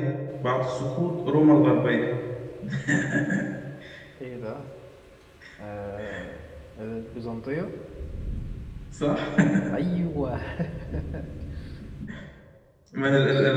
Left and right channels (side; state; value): both; identical; correlation 1.00